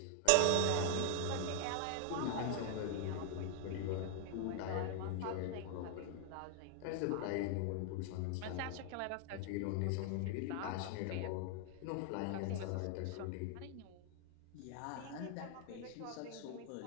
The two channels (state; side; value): different; both; correlation 0.00